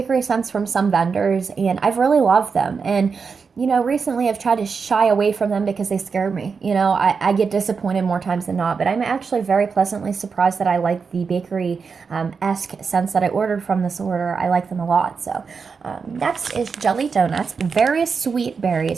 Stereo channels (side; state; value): left; quieter; 5.4 dB